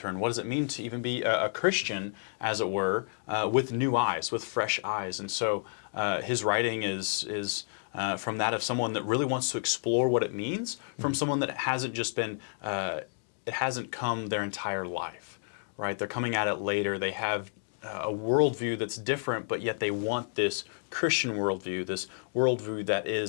What does it mean to even be a Christian, as it were, with new eyes, with fresh eyes? And so his writing is from that of someone that really wants to explore what it means, from someone that hasn't just been it hasn't come their entire life, right? They're coming at it later. They have a worldview that's different, but yet they want this Christian worldview, this worldview that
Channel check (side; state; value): right; silent; digital silence